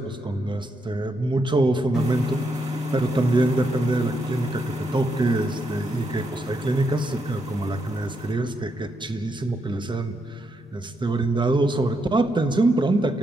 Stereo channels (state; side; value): normal; both; correlation 0.80